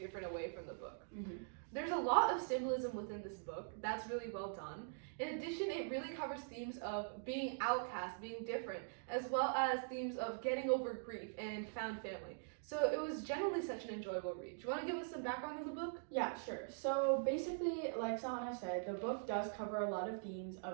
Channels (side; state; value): left; silent; digital silence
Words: away from the book. There's a lot of symbolism within this book that's really well done. In addition, it really covers themes of being outcast, being different, as well as themes of getting over grief and found family. So it was generally such an enjoyable read. Do you want to give us some background on the book? Yeah, sure. So basically, like Sahana said, the book does cover a lot of themes